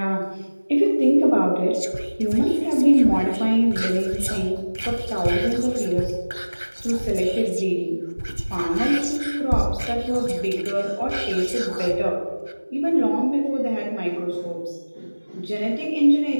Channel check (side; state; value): both; inverted; correlation -1.00